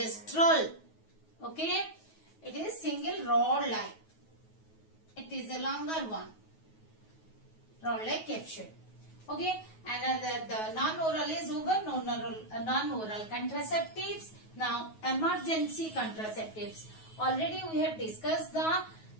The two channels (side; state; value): right; late; 9.3 ms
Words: Okay, it is single rod like. It is a longer one, rod like capsule. Okay, and the non-oral is over. Non-oral contraceptives. Now emergency contraceptives. Already we have discussed the